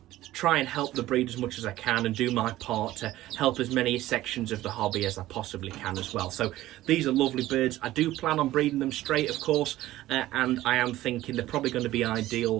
try and help the breed as much as I can and do my part to help as many sections of the hobby as I possibly can as well. So these are lovely birds. I do plan on breeding them straight, of course, and I am thinking they're probably going to be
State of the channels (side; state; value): left; quieter; 15.5 dB